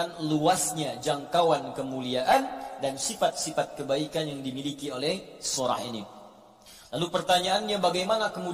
luasnya jangkauan kemuliaan dan sifat-sifat kebaikan yang dimiliki oleh surah ini. Lalu pertanyaannya, bagaimana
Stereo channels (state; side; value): identical; both; correlation 1.00